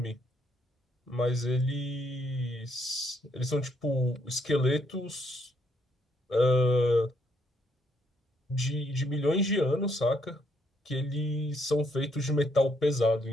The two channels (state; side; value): normal; both; correlation 0.72